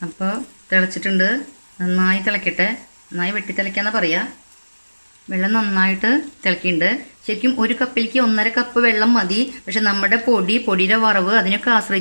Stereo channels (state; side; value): inverted; both; correlation -1.00